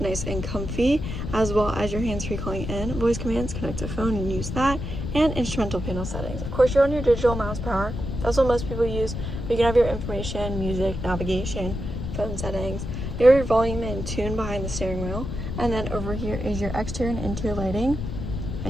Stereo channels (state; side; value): noise; left; rumble, 5 dB below the sound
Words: and comfy, as well as your hands-free calling in, voice commands, connect to phone and use that, and instrumental panel settings. Of course, you're on your digital miles per hour. That's what most people use. But you can have your information, music, navigation, phone settings. You have your volume and tune behind the steering wheel. And then over here is your exterior and interior lighting,